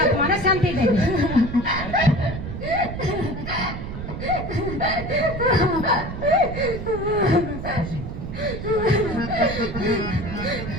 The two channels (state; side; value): noise; right; rumble, 7 dB below the sound